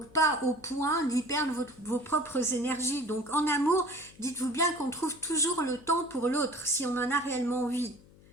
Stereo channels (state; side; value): noise; left; hum, 25 dB below the sound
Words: pas au point d'y perdre vos propres énergies. Donc en amour, dites-vous bien qu'on trouve toujours le temps pour l'autre, si on en a réellement envie.